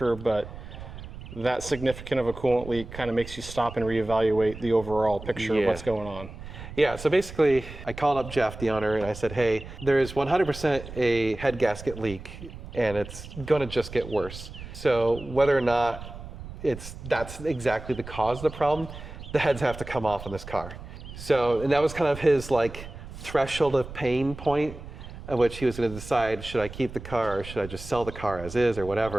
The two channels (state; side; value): noise; right; rumble, 13 dB below the sound